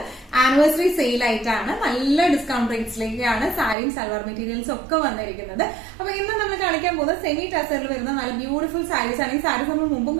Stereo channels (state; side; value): drops out; left; at 3.8 s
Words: ആനിവേഴ്സറി സെയിൽ ആയിട്ടാണ്. നല്ല ഡിസ്കൗണ്ട് റേറ്റ്സിലേക്കാണ് സാരിയും സൽവാർ മെറ്റീരിയൽസും ഒക്കെ വന്നിരിക്കുന്നത്. അപ്പൊ ഇന്ന് നമ്മൾ കാണിക്കാൻ പോകുന്നത് സെമി ടസറിൽ വരുന്ന നല്ല ബ്യൂട്ടിഫുൾ സാരീസ് ആണ്. ഈ സാരീസ് നമ്മൾ മുമ്പും